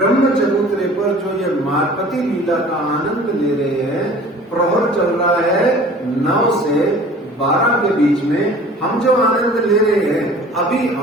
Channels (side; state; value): both; normal; correlation 0.46